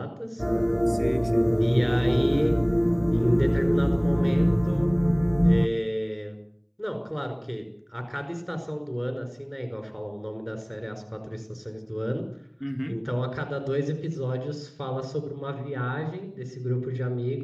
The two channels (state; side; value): identical; both; correlation 1.00